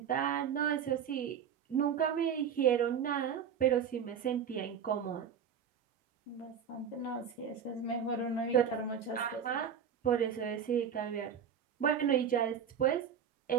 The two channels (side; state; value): left; quieter; 7.8 dB